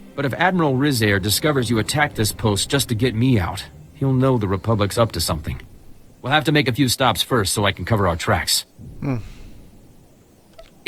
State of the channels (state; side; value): identical; both; correlation 1.00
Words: But if Admiral Rizair discovers you attacked this post just to get me out, he'll know the Republic's up to something. We'll have to make a few stops first so I can cover our tracks.